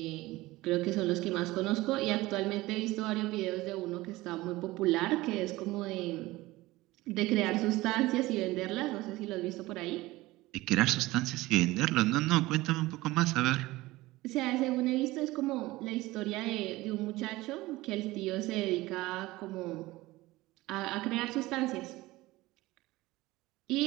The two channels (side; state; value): left; quieter; 19.1 dB